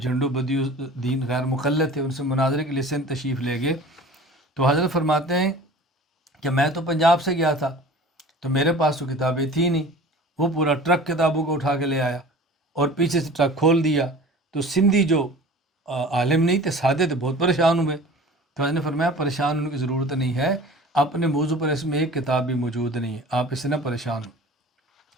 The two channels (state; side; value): normal; both; correlation 0.41